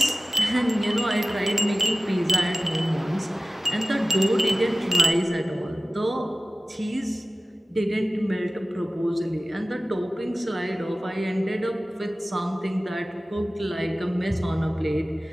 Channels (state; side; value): normal; both; correlation 0.97